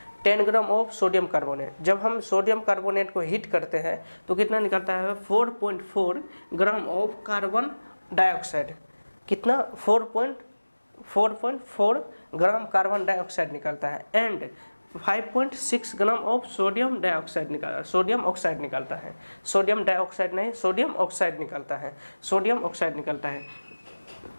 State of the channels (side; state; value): both; inverted; correlation -1.00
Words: 10 ग्राम ऑफ सोडियम कार्बोनेट। जब हम सोडियम कार्बोनेट को हीट करते हैं तो कितना निकलता है 4.4 ग्राम ऑफ कार्बन डाइऑक्साइड। कितना 4.4 ग्राम कार्बन डाइऑक्साइड निकलता है and 5.6 gram of sodium dioxide निकलता है। सोडियम ऑक्साइड निकलता है, सोडियम डाइऑक्साइड नहीं, सोडियम ऑक्साइड निकलता है, सोडियम ऑक्साइड निकलता है।